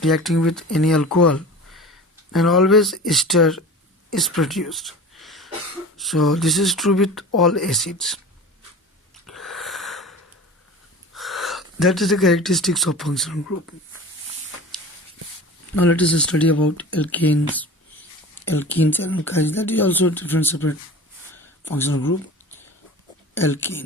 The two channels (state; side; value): normal; both; correlation 0.36